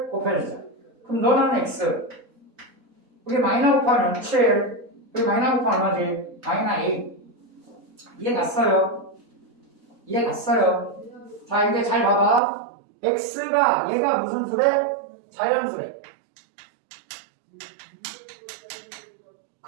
곱해주자. 그럼 너는 x. 우리 마이너 곱하면 7. 우리 마이너 곱하면 얼마지? 마이너 8. 이해 갔어요? 이해 갔어요? 자, 이제 잘 봐봐. x가 얘가 무슨 수래? 자연수래.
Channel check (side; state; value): left; drops out; at 12.4 s